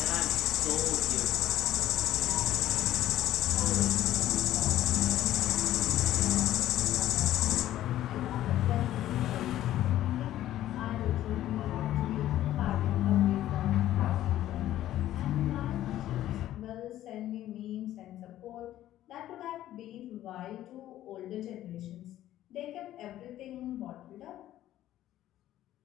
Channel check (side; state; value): right; quieter; 13.3 dB